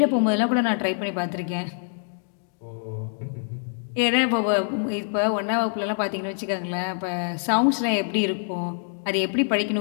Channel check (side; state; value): right; silent; digital silence